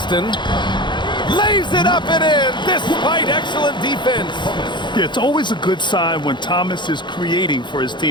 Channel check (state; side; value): late; right; 0.22 ms